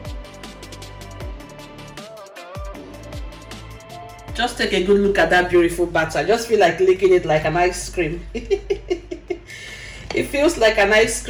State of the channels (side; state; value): both; identical; correlation 1.00